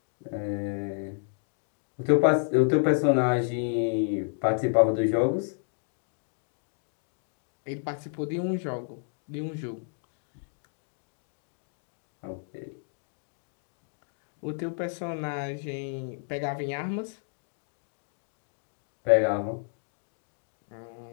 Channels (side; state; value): right; silent; digital silence